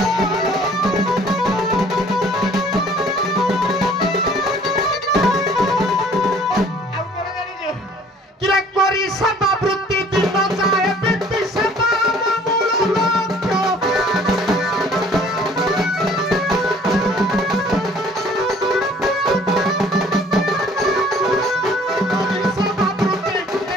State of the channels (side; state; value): both; normal; correlation 0.54